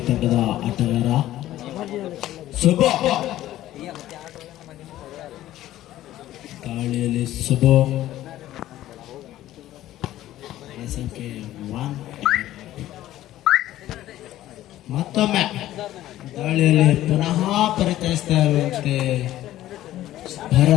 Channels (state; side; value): quieter; right; 14.1 dB